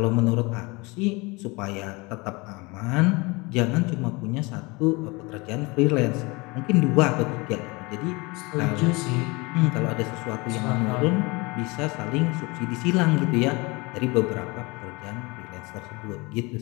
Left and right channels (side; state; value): right; quieter; 25.7 dB